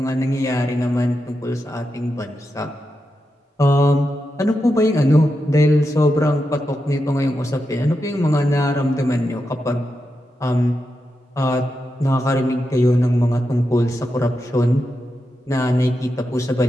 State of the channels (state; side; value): normal; both; correlation 0.87